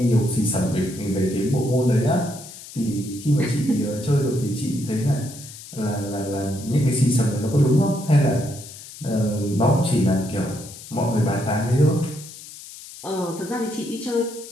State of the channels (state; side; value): noise; left; hiss, 15 dB below the sound